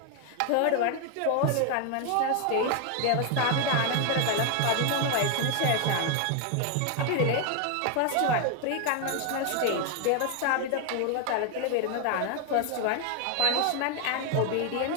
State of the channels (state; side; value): different; both; correlation 0.01